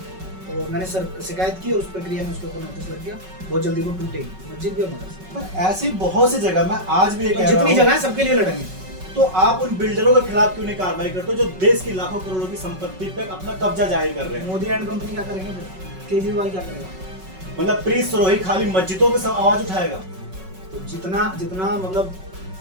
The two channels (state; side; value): late; left; 5.3 ms